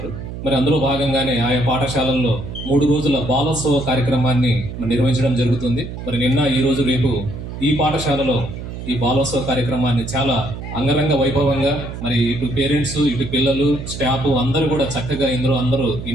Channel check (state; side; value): noise; right; hum, 9 dB below the sound